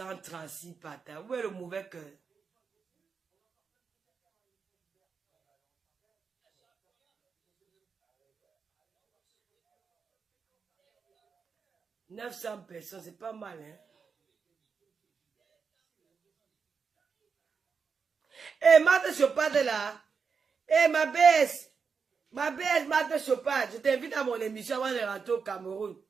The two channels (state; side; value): quieter; left; 5.6 dB